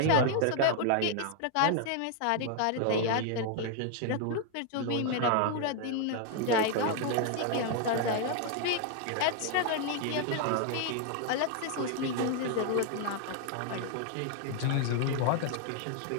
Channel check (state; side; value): different; both; correlation 0.00